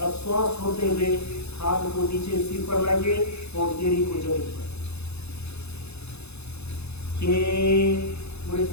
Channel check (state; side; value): late; right; 0.80 ms